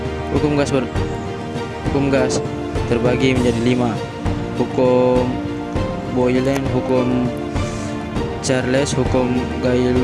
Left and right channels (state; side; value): identical; both; correlation 1.00